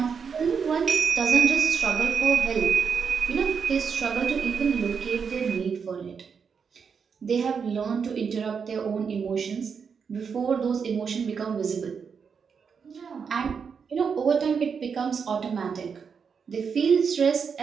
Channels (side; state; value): left; quieter; 6.2 dB